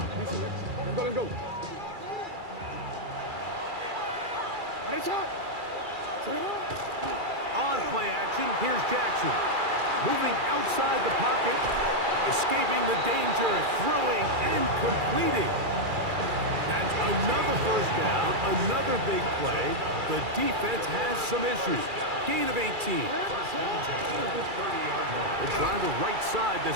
Let go. On play action, here's Jackson. Moving outside the pocket. Escaping the danger, throwing and completing. That's another first down, another big play. The defense has some issues. Gain of 18. They'll try the right side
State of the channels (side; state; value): left; late; 2.3 ms